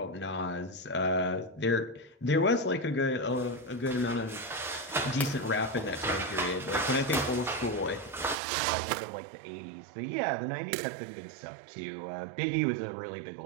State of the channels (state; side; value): drops out; left; at 8.3 s